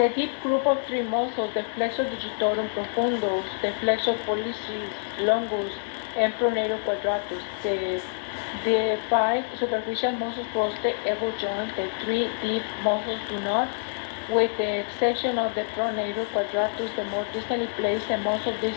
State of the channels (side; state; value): right; silent; digital silence